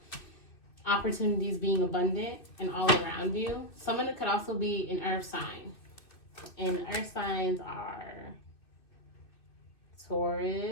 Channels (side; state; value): right; late; 2.6 ms